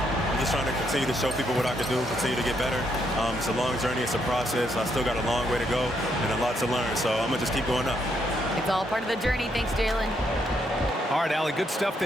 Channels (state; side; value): normal; both; correlation 0.75